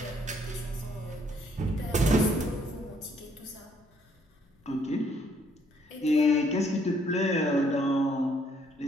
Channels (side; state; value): both; normal; correlation 0.67